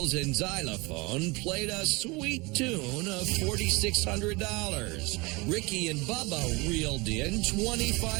and xylophone played a sweet tune of $4,600. Ricky and Bubba reeled in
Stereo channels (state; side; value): quieter; left; 25.2 dB